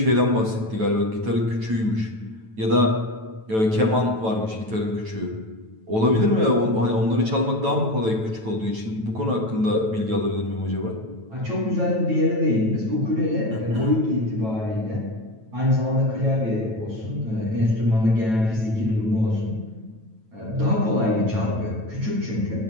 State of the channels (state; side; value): late; left; 9.1 ms